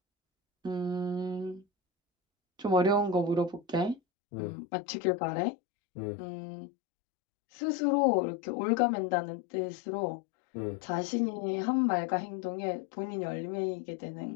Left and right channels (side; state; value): right; drops out; at 4.0 s